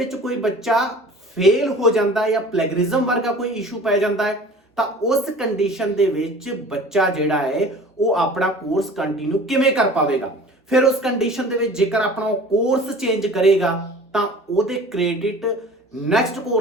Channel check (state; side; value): normal; both; correlation 0.43